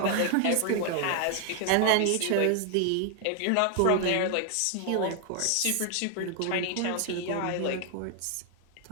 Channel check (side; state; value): both; different; correlation 0.00